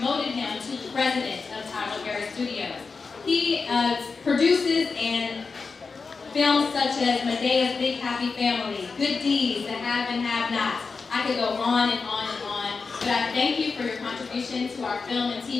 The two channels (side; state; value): right; quieter; 4.7 dB